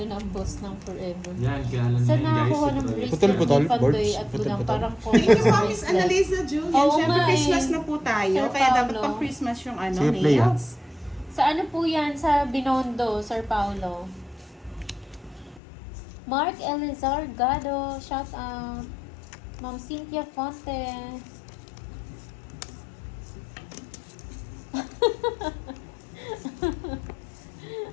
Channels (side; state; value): right; drops out; at 15.6 s